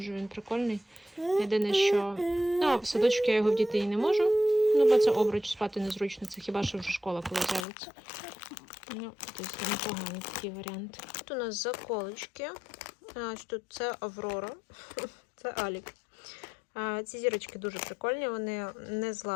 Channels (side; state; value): right; drops out; at 7.7 s